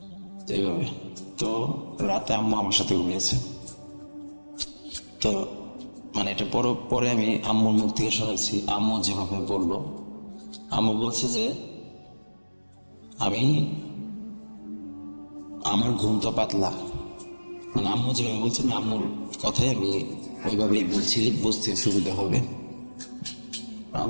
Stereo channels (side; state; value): both; inverted; correlation -1.00